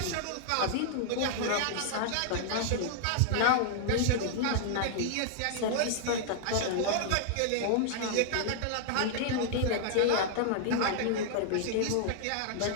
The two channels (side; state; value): both; different; correlation -0.01